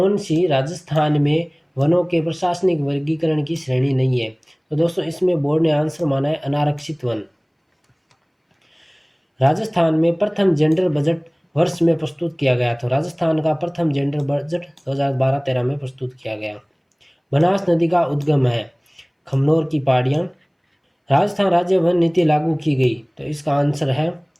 सी राजस्थान में वनों के प्रशासनिक वर्गीकरण की श्रेणी नहीं है। तो दोस्तों, इसमें बोर्ड ने आंसर माना है अनारक्षित वन। राजस्थान में प्रथम जेंडर बजट वर्ष में प्रस्तुत किया गया। तो राजस्थान का प्रथम जेंडर बजट 2012-13 में प्रस्तुत किया गया। बनास नदी का उद्गम है खमनोर की पहाड़ियाँ। राजस्थान राज्य वन नीति लागू की गई। तो इसका आंसर है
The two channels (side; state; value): both; identical; correlation 1.00